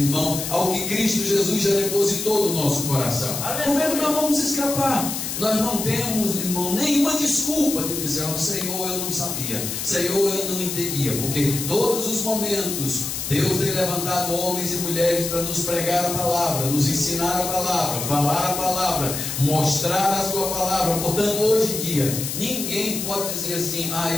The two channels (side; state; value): left; noise; hiss, 4 dB below the sound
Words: ao que Cristo Jesus já depositou no nosso coração, como é que nós vamos escapar? Nós não temos, irmão, nenhuma desculpa de dizer: oh, Senhor, eu não sabia, Senhor, eu não entendia, porque todos os momentos Deus tem levantado homens e mulheres para nos pregar a palavra, nos ensinar a palavra, falar a palavra, mostrar a sua palavra. Portanto, hoje em dia, ninguém pode dizer assim: ah,